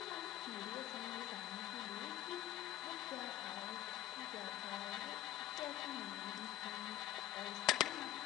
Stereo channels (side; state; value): right; quieter; 14.3 dB